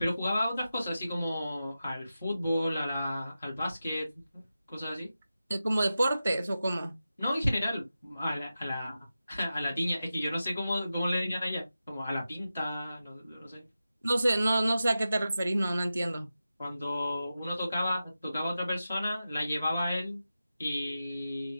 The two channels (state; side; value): inverted; both; correlation -0.92